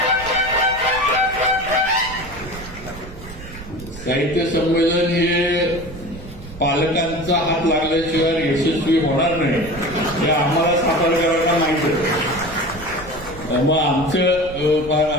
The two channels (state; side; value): noise; right; rumble, 14 dB below the sound